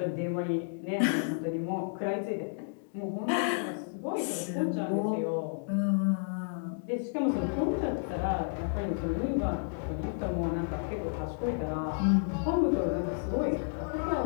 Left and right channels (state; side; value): silent; right; digital silence